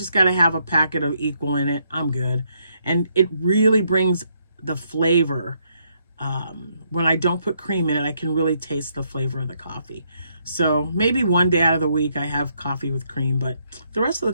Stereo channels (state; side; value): inverted; both; correlation -0.74